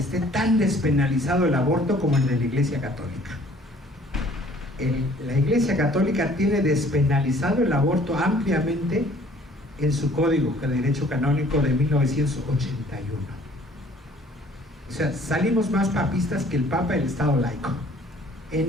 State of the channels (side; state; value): both; normal; correlation 0.55